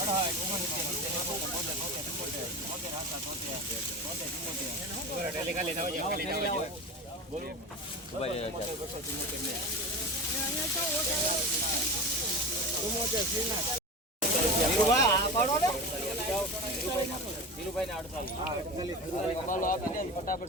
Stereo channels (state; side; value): normal; both; correlation 0.28